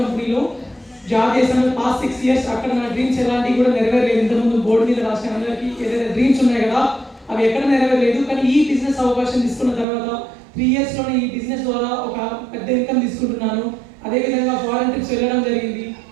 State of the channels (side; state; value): left; drops out; at 9.9 s